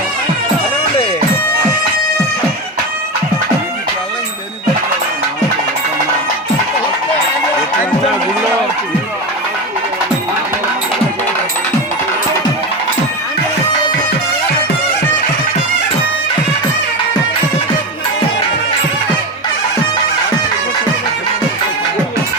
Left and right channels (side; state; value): both; normal; correlation 0.21